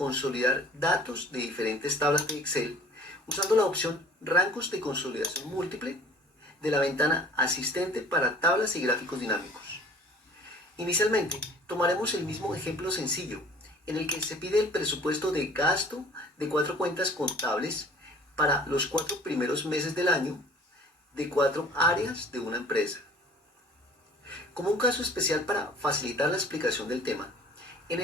datos de diferentes tablas de Excel usando la opción Rangos de consolidación múltiple de la ventana Asistente para tablas y gráficos dinámicos. Inicialmente, tomaremos el mismo ejemplo sencillo, en el que se pide el presupuesto de gasto de 4 cuentas contables para los 4 primeros meses del año de 4 áreas de una empresa. Como un caso especial para facilitar la explicación del tema, en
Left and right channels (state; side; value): normal; both; correlation 0.49